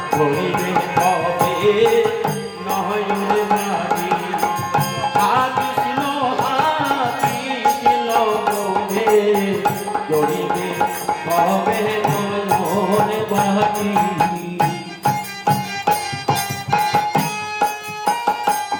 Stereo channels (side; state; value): both; identical; correlation 1.00